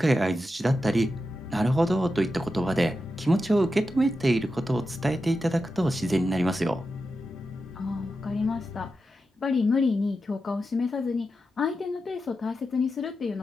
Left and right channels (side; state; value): both; normal; correlation 0.89